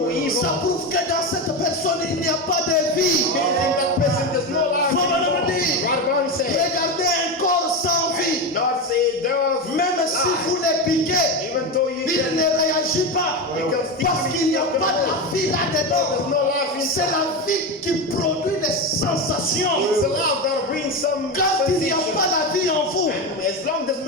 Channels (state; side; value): normal; both; correlation 0.16